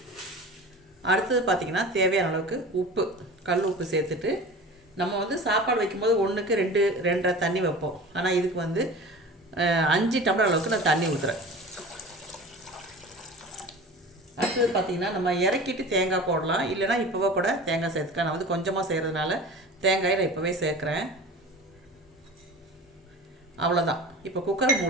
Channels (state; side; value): normal; both; correlation 0.36